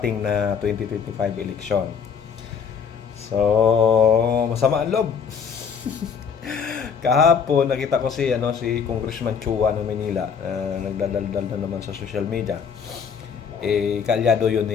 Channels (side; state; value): right; quieter; 6.6 dB